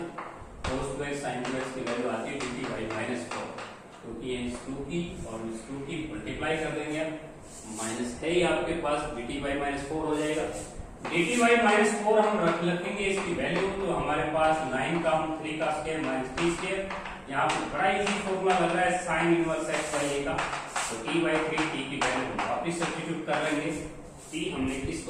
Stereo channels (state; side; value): identical; both; correlation 1.00